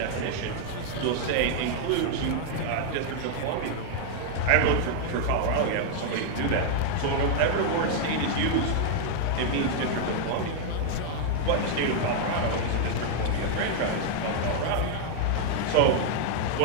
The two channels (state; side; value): different; both; correlation 0.00